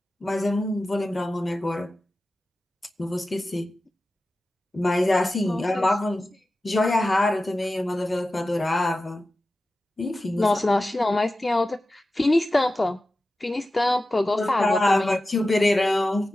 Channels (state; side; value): normal; both; correlation 0.94